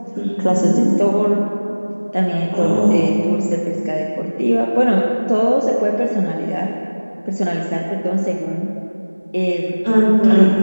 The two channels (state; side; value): inverted; both; correlation -1.00